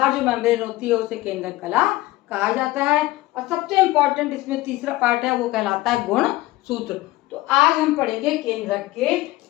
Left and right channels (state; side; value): quieter; right; 18.1 dB